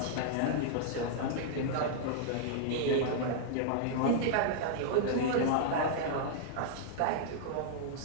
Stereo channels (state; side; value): different; both; correlation -0.01